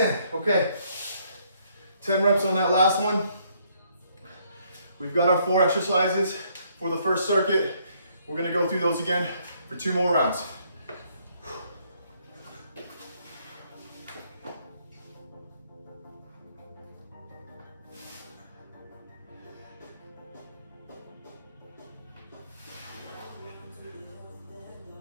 okay. 10 reps on that last one. We've got our 4 exercises for the first circuit. We're gonna go through those again for 2 more rounds.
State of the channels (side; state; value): both; inverted; correlation -0.68